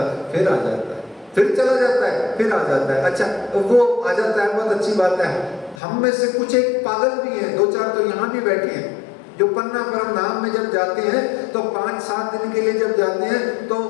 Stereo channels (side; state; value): right; drops out; at 5.8 s